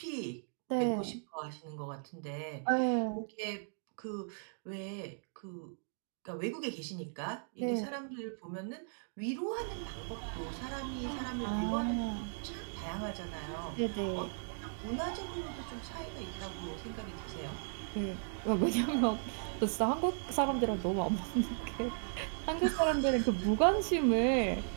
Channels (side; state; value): left; silent; digital silence